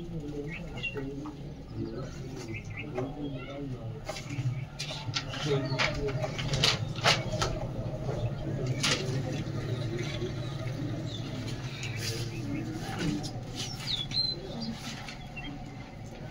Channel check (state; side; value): identical; both; correlation 1.00